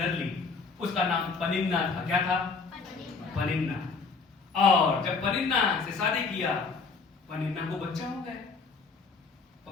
ली। उसका नाम पनिन्ना था। क्या था? पनिन्ना। और जब पनिन्ना से शादी किया, पनिन्ना को बच्चा हो गया।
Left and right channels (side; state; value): right; quieter; 4.6 dB